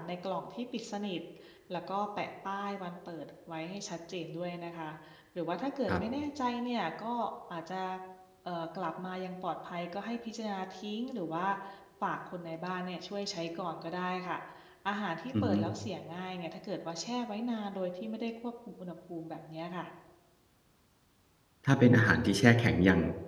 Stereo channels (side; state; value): both; identical; correlation 1.00